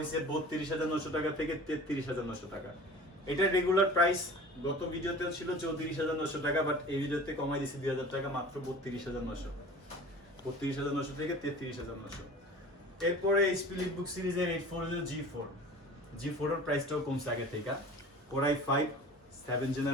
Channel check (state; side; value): normal; both; correlation 0.41